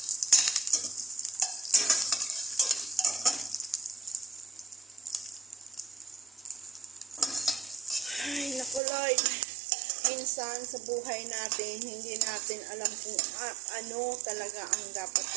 Ay, naku Lord. Minsan sa buhay natin, hindi natin alam kung ano talaga ang dapat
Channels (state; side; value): drops out; left; at 8.8 s